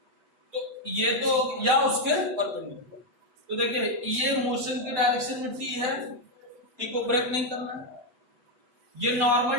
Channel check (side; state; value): left; late; 7.9 ms